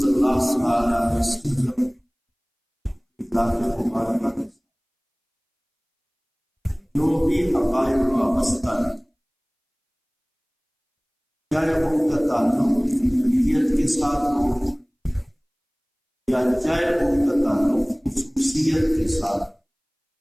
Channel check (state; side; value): identical; both; correlation 1.00